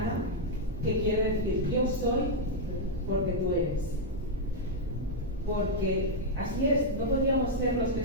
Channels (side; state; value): both; normal; correlation -0.03